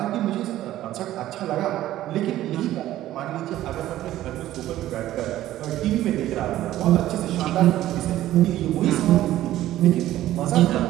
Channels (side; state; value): left; quieter; 14.0 dB